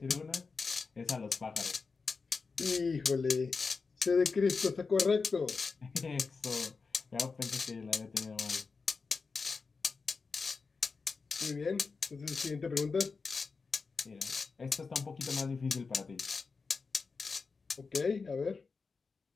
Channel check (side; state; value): right; quieter; 4.6 dB